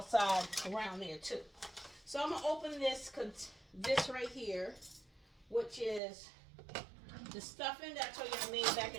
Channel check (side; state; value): left; drops out; at 6.0 s